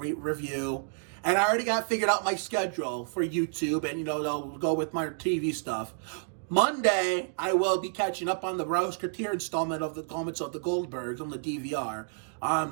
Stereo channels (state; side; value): silent; left; digital silence